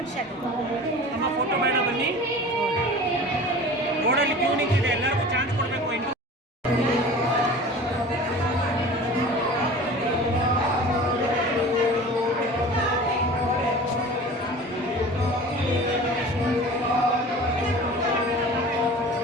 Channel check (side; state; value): both; normal; correlation 0.39